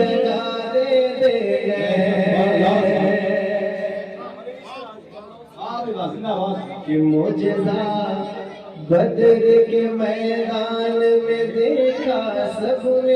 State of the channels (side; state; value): both; identical; correlation 1.00